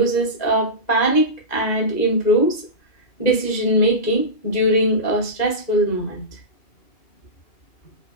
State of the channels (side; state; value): right; late; 2.0 ms